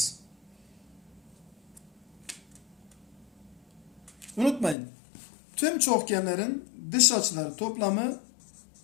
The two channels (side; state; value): right; drops out; at 4.8 s